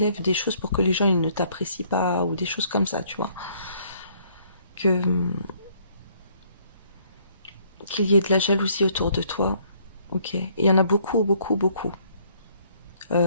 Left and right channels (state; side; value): inverted; both; correlation -0.64